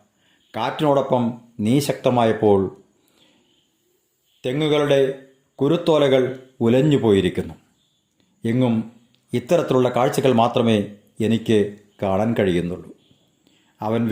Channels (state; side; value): identical; both; correlation 1.00